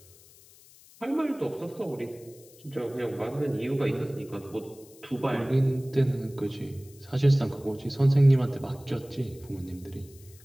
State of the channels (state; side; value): noise; left; hiss, 24 dB below the sound